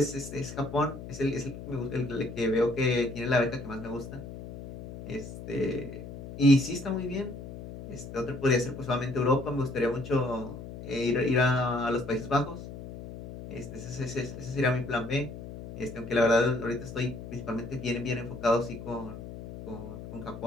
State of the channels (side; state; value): left; noise; hum, 11 dB below the sound